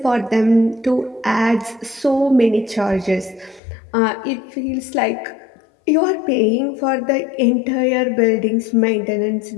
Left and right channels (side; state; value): right; drops out; at 3.6 s